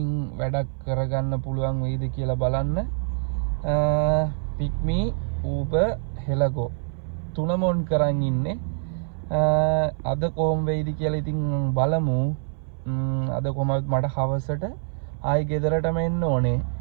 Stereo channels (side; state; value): left; silent; 60 dB below the other